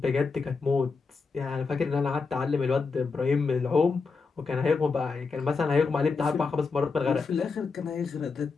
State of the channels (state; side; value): quieter; right; 4.7 dB